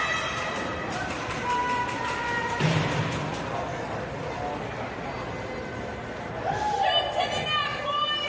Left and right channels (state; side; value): identical; both; correlation 1.00